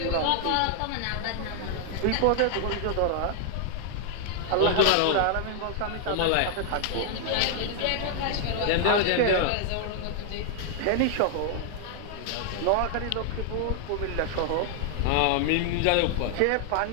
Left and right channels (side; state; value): both; different; correlation 0.00